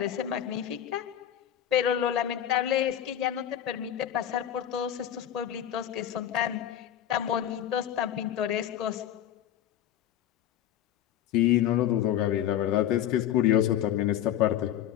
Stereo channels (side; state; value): right; quieter; 11.0 dB